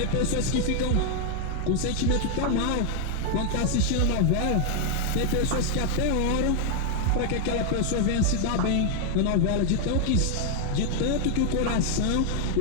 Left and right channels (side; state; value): both; different; correlation 0.00